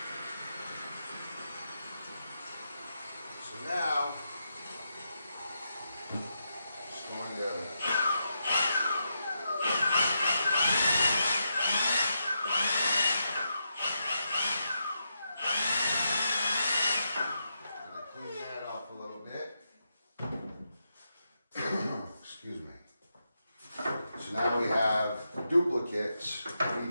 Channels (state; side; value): inverted; both; correlation -0.84